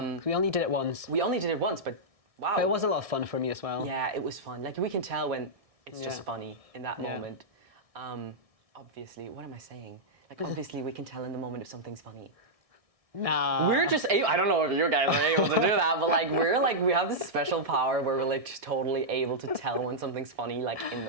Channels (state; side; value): late; left; 1.6 ms